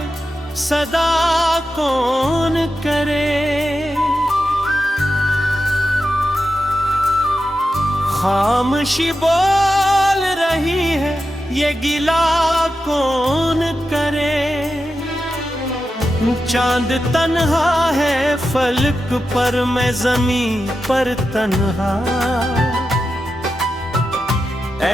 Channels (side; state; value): both; normal; correlation 0.90